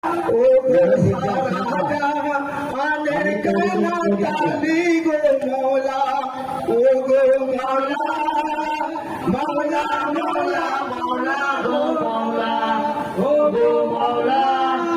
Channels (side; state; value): both; identical; correlation 1.00